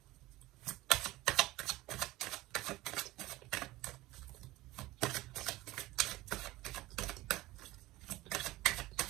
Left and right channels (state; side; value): quieter; left; 18.5 dB